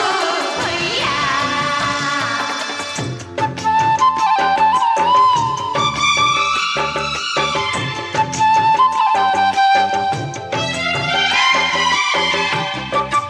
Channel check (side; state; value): both; identical; correlation 1.00